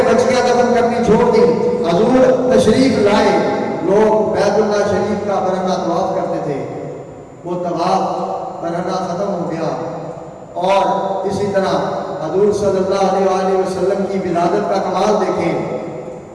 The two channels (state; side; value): identical; both; correlation 1.00